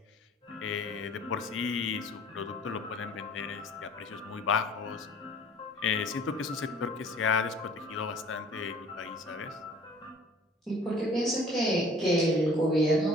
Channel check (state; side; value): normal; both; correlation 0.50